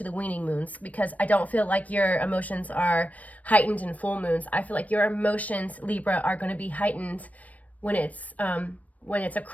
the weaning moons, because I don't feel like your emotions are heightened in full moons. I feel like your emotions, Libra, are going to be heightened when it's a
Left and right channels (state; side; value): late; right; 0.071 ms